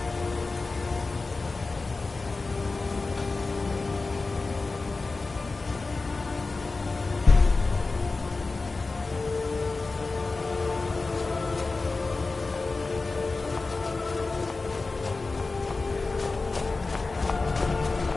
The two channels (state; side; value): quieter; right; 3.7 dB